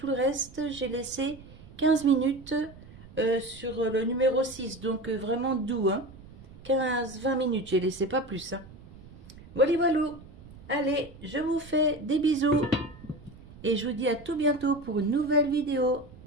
le reste, j'ai laissé 15 minutes sur le numéro 6. Donc vraiment doux, hein. 15-20 minutes, j'ai laissé pas plus. Hein. Voilà, voilà. Allez, je vous fais des bisous. Et je vous dis à tout bientôt pour une nouvelle vidéo.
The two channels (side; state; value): right; noise; rumble, 19 dB below the sound